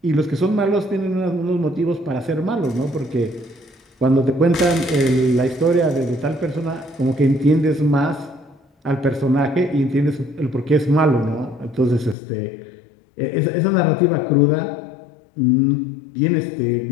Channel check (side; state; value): right; drops out; at 12.2 s